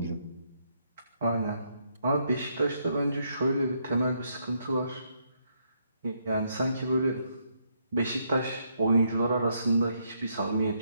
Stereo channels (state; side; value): inverted; both; correlation -0.75